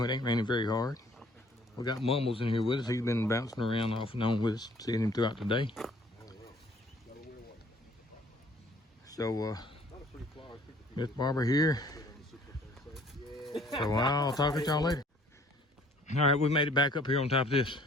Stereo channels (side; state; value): both; normal; correlation 0.57